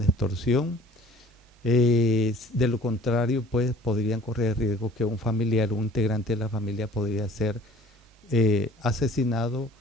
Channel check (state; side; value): normal; both; correlation 0.50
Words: extorsión. De lo contrario, pues podrían correr el riesgo que un familiar, un integrante de la familia podría ser asesinado